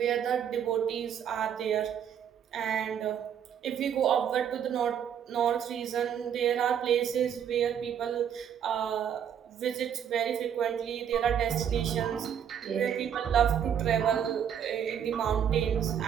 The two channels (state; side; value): quieter; left; 8.6 dB